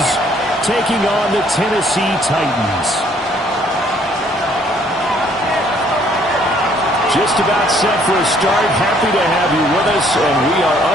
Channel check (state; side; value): normal; both; correlation 0.63